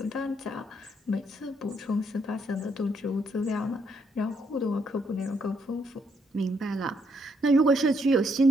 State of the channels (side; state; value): both; normal; correlation 0.74